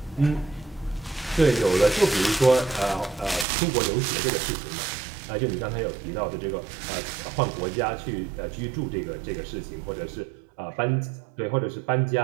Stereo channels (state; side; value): drops out; left; at 3.5 s